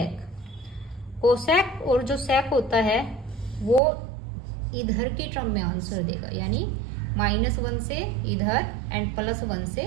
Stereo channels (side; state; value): left; drops out; at 3.8 s